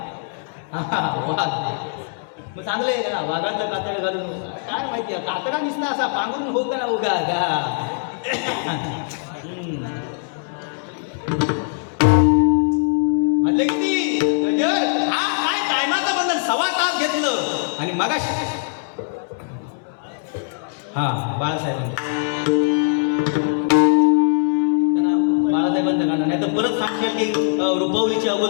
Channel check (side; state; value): right; silent; digital silence